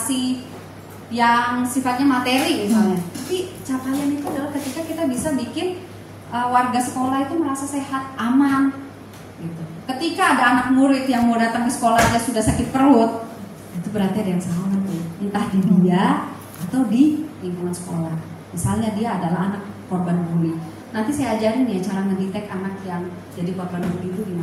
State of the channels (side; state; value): both; identical; correlation 1.00